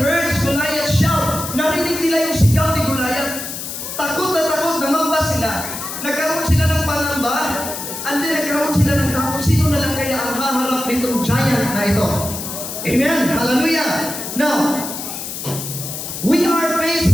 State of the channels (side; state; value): left; noise; hiss, 7 dB below the sound